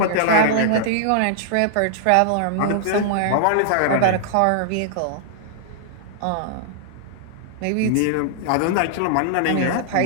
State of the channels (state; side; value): different; both; correlation -0.01